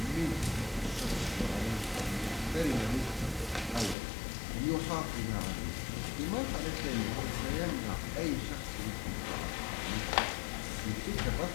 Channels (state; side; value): drops out; right; at 4.0 s